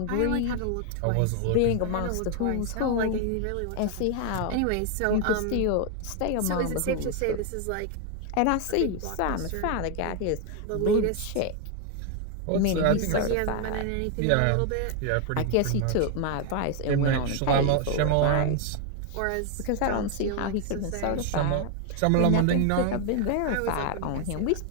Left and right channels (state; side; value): different; both; correlation 0.01